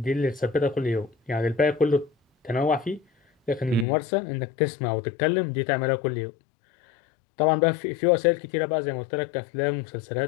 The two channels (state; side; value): drops out; right; at 3.9 s